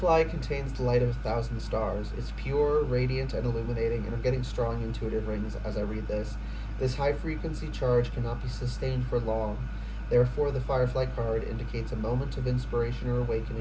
contains the light of 1,000 stars. It's pure, radiant, and illuminating, and I'm getting strong intuitive rings as I read this. This high-frequency charge cannot be sustained for long. Therefore, the Firefly card indicates a moment of inspiration or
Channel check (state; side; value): identical; both; correlation 1.00